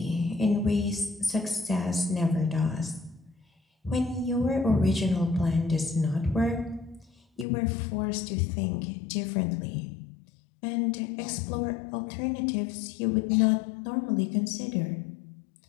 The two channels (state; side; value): drops out; right; at 7.5 s